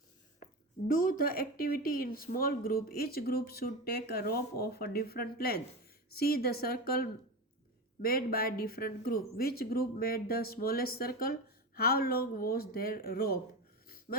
Do the activity in small group. Each group should take a rope of a different length. See the circle made by different group. Which group made the smallest circle? How long was their rope?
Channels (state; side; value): normal; both; correlation 0.22